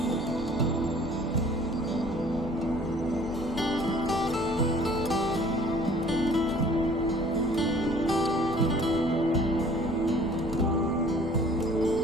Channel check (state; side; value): normal; both; correlation 0.52